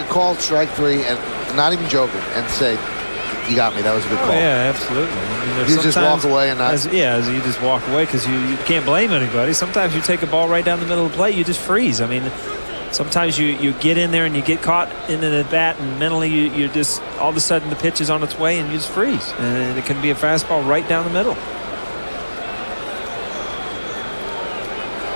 call at strike 3 and not even joking and say, you got me, that was a good call? Yeah, absolutely. I mean, you just walk away and not. As you just walk away because you can't blame anybody. Sometimes you take a ball right down the middle of the plate, you just freeze. I mean, sometimes you get in there and you get caught in the bat, and mentally you just all of a sudden the pitch is on its way and you just freeze. And it can be a fastball right down the middle.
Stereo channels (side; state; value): both; inverted; correlation -1.00